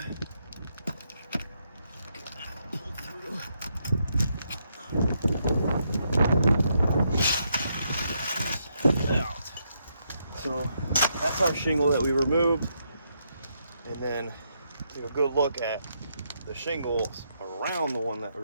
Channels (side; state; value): both; inverted; correlation -0.78